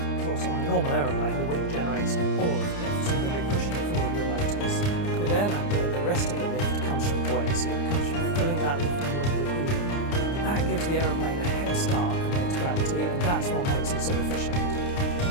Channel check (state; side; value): late; right; 29 ms